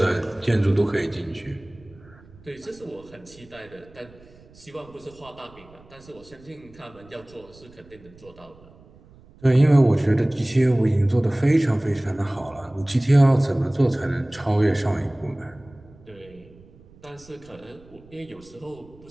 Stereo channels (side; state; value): right; noise; rumble, 25 dB below the sound